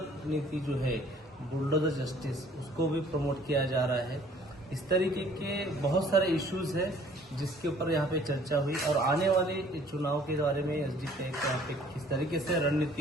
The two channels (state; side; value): normal; both; correlation 0.56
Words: नीति जो है, बुलडोजर जस्टिस, उसको भी प्रमोट किया जा रहा है। इस तरीके के बहुत सारे इश्यूज हैं जिसके ऊपर यहाँ पे चर्चा हुई और आने वाले चुनाव के बारे में एसडीपीआई के यहाँ पे किस तरीके से